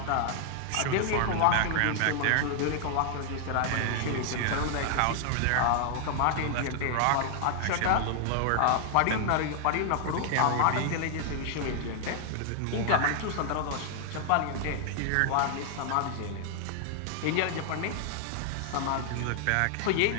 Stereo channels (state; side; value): different; both; correlation 0.00